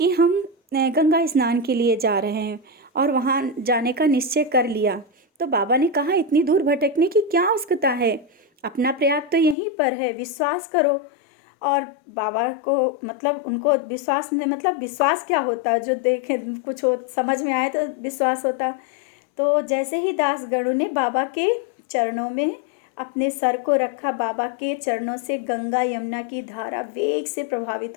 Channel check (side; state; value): right; drops out; at 9.6 s